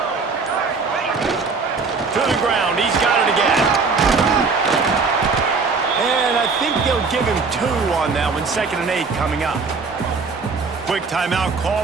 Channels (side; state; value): left; quieter; 4.6 dB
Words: To the ground. He's got it again. And I think they'll give him 2 on that one. 2nd and 8 coming up. Quick timeout